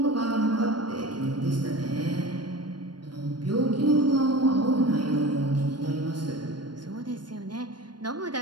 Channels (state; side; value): late; left; 0.71 ms